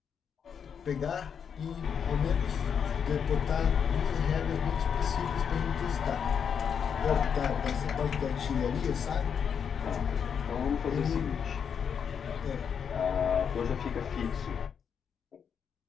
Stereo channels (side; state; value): right; quieter; 7.2 dB